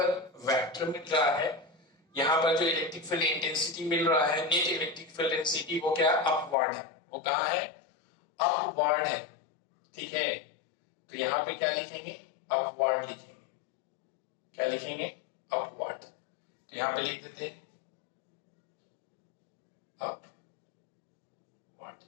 वेक्टर मिल रहा है, यहाँ पर जो इलेक्ट्रिक फील्ड इंटेंसिटी मिल रहा है, नेट इलेक्ट्रिक फील्ड इंटेंसिटी, वो क्या अपवर्ड है, वो कहां है, अपवर्ड है, ठीक है। तो यहाँ पे क्या लिखेंगे, अपवर्ड लिखेंगे, क्या लिखेंगे, अपवर्ड। तो यहाँ पे लिख देते हैं अपवर्ड,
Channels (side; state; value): right; drops out; at 6.6 s